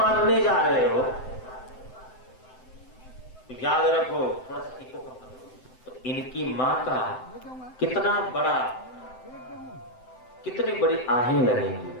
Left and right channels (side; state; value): right; late; 7.8 ms